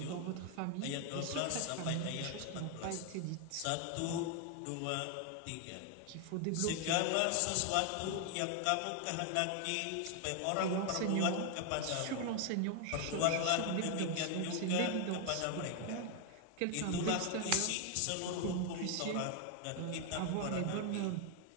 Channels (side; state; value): both; different; correlation 0.00